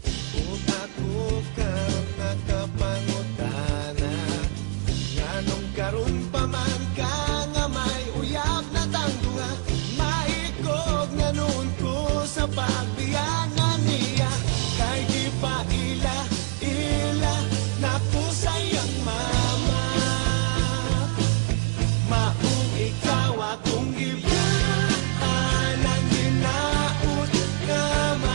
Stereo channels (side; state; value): left; quieter; 36.4 dB